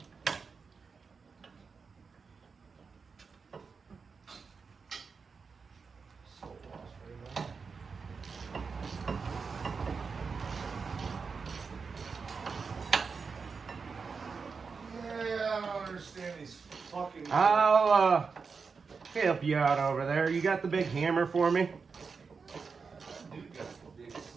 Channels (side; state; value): left; quieter; 5.2 dB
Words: Understand these fucking. I'll help you out over there. You got the big hammer for me? Dude got the big